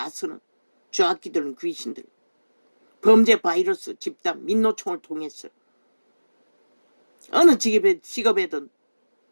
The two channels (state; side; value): inverted; both; correlation -1.00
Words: 쓰는 좌악기들은 귀신들. 범죄 바이러스 집단 민노총을 통해서 어느 직업에든